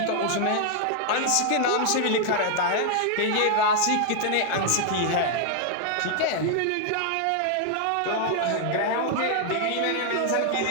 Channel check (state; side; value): different; both; correlation 0.00